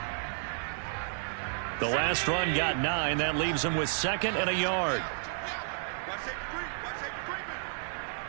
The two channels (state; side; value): silent; left; digital silence